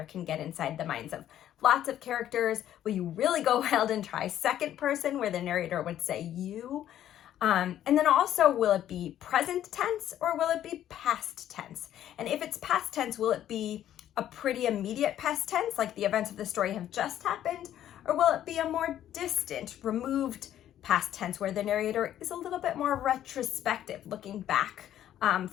can get inside the minds of lots of characters? Will you really go wild and try second person where the narrator would say you? And then also, will it be present tense or will it be past tense? And if it's past tense, will it be a pretty immediate past tense, like the events of the story have just happened? Or will it be a more distant, removed past tense where the narrator is a little bit more retrospective, looking back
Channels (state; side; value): quieter; right; 11.5 dB